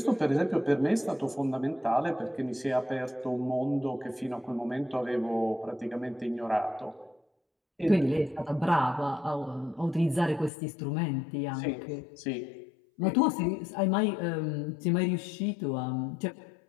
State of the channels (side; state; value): right; drops out; at 10.5 s